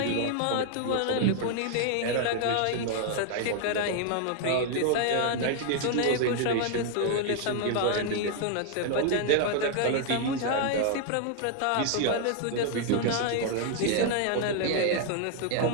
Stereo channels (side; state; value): both; different; correlation 0.00